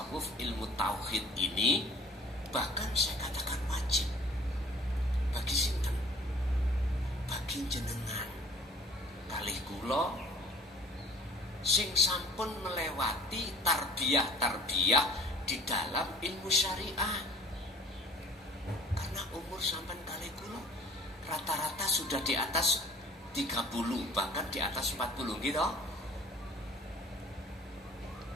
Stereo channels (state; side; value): normal; both; correlation 0.50